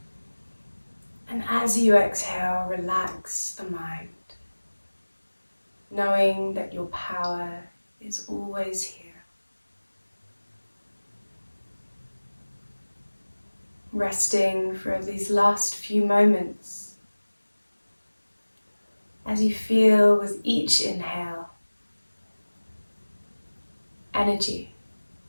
And as you exhale, relax the mind, knowing that your power is always here. Resting for these last few moments as you feel with each inhale, energy.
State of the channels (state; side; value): inverted; both; correlation -1.00